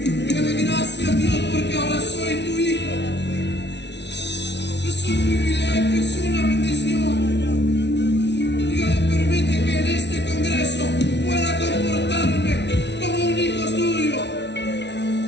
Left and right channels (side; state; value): right; late; 0.50 ms